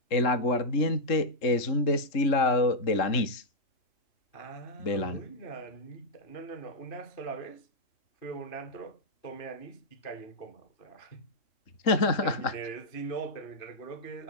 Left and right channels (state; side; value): late; right; 3.7 ms